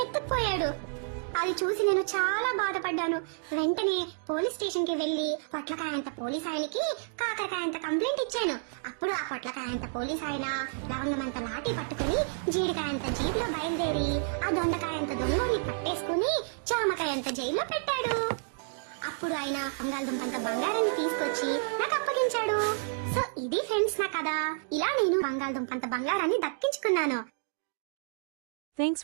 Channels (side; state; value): left; silent; digital silence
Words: ఎత్తుకుపోయాడు. అది చూసి నేను చాలా బాధపడ్డాను. వెంటనే పోలీస్ స్టేషన్ కి వెళ్లి పొట్లకాయంత పోలీస్ ఆయనకి కాకరకాయంత కంప్లైంట్ ఇచ్చాను. అప్పుడు ఆ పొట్లకాయంత పోలీస్ ఆయన లవంగమంత లాఠీ పట్టుకుని జీడికాయంత జీబులో బయలుదేరి ఆ దొండకాయంత దొంగోడిని పట్టేసుకుని జామకాయంత జైల్లో పెట్టాడు. అప్పుడు ఆయన బంగాళదుంపంత బంగారాన్ని తీసుకొచ్చి నాకు అప్పగించాడు. సో ఇది ఫ్రెండ్స్ నా కథ. ఇలా నేను బంగాళదుంపంత బంగారాన్ని దక్కించుకున్నాను. Thanks